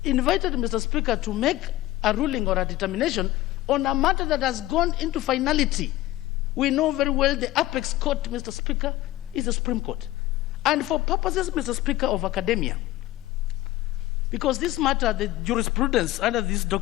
invited, Mr. Speaker, to make a ruling or a determination on a matter that has gone into finality. We know very well the apex court, Mr. Speaker, is the Supreme Court. And for purposes, Mr. Speaker, of academia, because this matter, the jurisprudence under this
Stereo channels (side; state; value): right; quieter; 16.4 dB